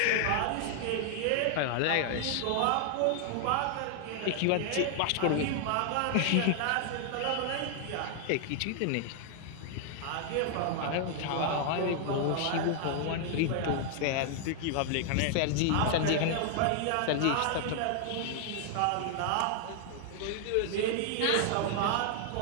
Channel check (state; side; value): different; both; correlation 0.00